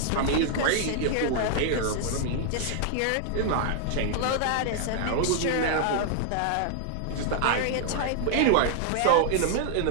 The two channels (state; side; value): different; both; correlation -0.01